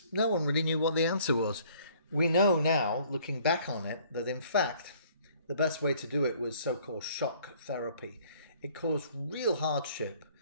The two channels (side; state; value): both; inverted; correlation -0.58